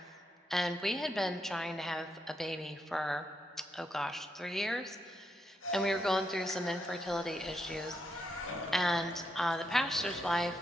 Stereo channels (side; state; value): both; normal; correlation 0.81